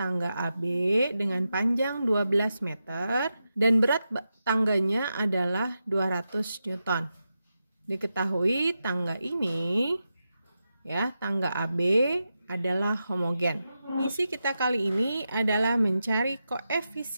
AB dengan panjang 12 meter dan berat tangganya adalah 200 Newton. Diketahui tangga ini ya, tangga AB adalah homogen. Misi kita kali ini adalah mencari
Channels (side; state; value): both; inverted; correlation -0.89